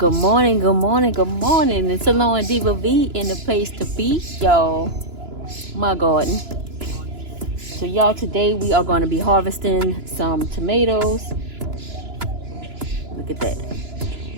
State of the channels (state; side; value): late; left; 2.9 ms